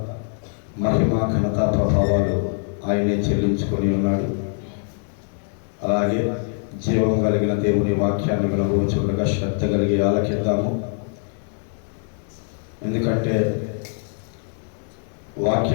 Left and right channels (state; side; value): silent; right; 58 dB below the other